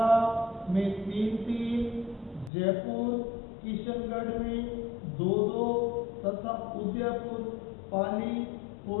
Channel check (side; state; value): right; drops out; at 2.5 s